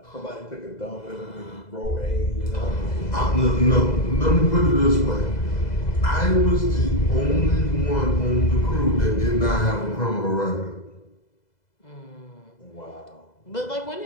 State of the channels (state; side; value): late; right; 2.0 ms